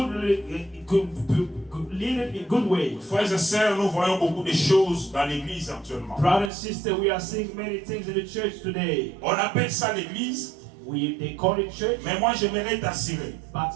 leaded in good way. Frères et sœurs, nous voyons beaucoup de choses dans l'église actuellement. Brother and sister, we are seeing many things in the church today. On appelle ça l'église, They call it church, mais moi j'aimerais t'assurer. but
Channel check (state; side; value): drops out; left; at 6.5 s